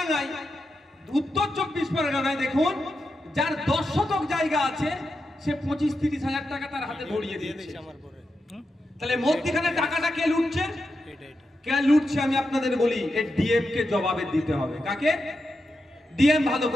উত্তর 24 পরগনায় দেখুন, যার 10 শতক জায়গা আছে সে 25-30 হাজার টাকা তার হাতে ধরিয়ে দিয়েছে। তাহলে মধ্যখানে টাকাটা কে লুটছে? কে লুটছে আমি আপনাদের বলি, এই ডিএম কে জবাবে দিতে হবে। কাকে? ডিএম ভালো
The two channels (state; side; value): normal; both; correlation 0.87